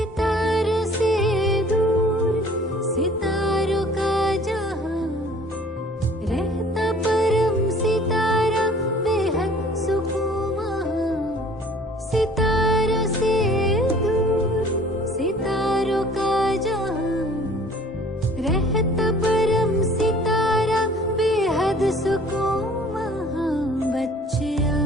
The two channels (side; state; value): both; normal; correlation 0.51